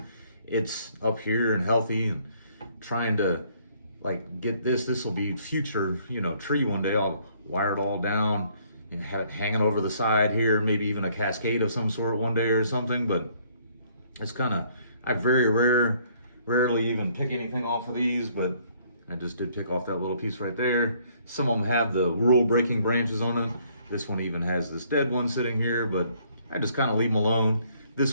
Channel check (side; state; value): both; inverted; correlation -0.64